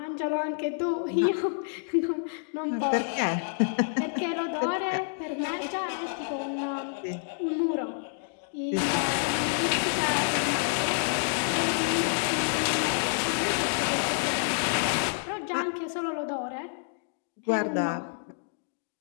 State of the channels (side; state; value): right; silent; digital silence